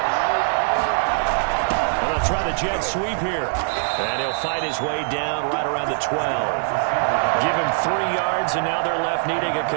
Try the jet sweep here. And he'll fight his way down right around the 12. Give him 3 yards, and now they're left needing a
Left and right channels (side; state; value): left; silent; 64 dB below the other